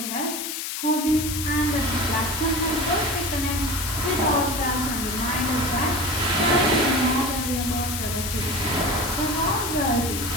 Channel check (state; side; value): noise; left; hiss, 4 dB below the sound